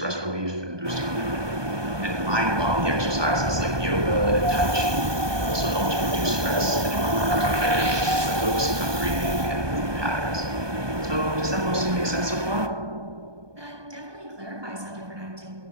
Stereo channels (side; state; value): left; late; 1.2 ms